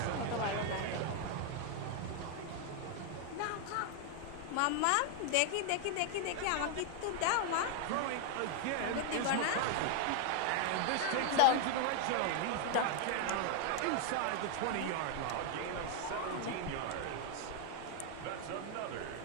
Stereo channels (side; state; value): both; different; correlation 0.00